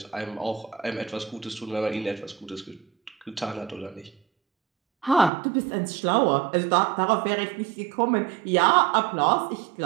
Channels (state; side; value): drops out; left; at 5.3 s